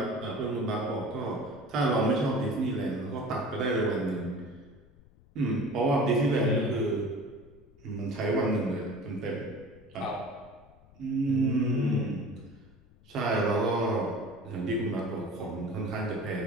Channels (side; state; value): left; noise; rumble, 25 dB below the sound